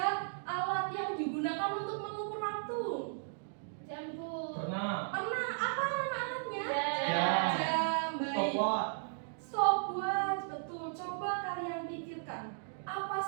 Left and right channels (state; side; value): silent; left; digital silence